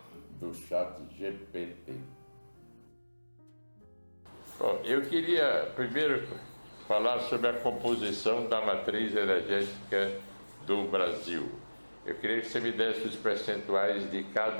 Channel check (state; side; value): inverted; both; correlation -1.00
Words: do ChatGPT. Bom, eu queria primeiro falar sobre a composição da matriz energética do Brasil. Eu queria que você me desse os percentuais de